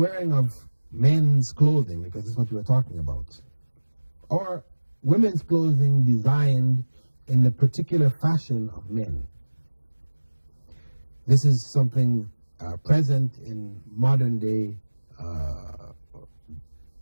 of men's clothing, because this is what we're talking about, or women's clothing designed in the particular fashion of men. This is something present in modern day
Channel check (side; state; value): both; inverted; correlation -1.00